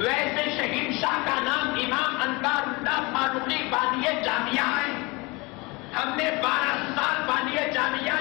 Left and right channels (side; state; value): right; quieter; 25.7 dB